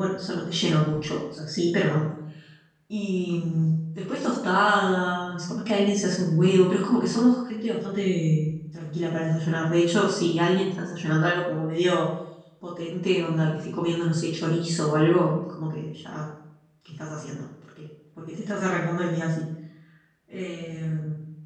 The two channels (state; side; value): identical; both; correlation 1.00